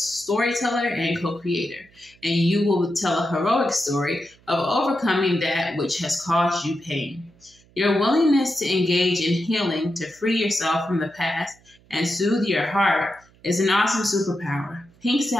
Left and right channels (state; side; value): noise; right; hum, 30 dB below the sound